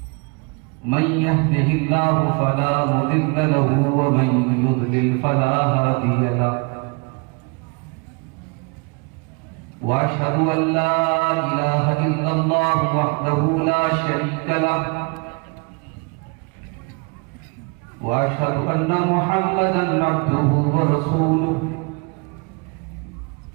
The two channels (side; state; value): left; quieter; 31.6 dB